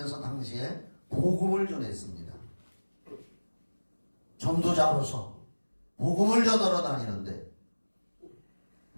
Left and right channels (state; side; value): inverted; both; correlation -1.00